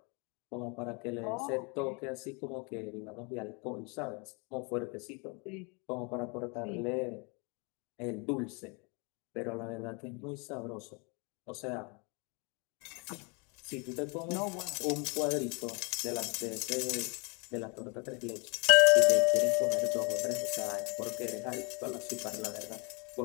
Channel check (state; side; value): quieter; right; 32.7 dB